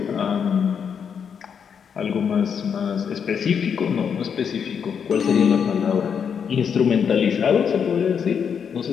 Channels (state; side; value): quieter; right; 7.1 dB